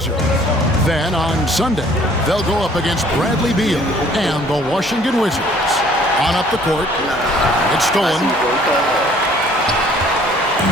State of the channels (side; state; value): both; normal; correlation 0.57